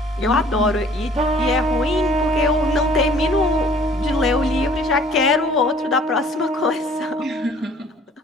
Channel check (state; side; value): normal; both; correlation 0.54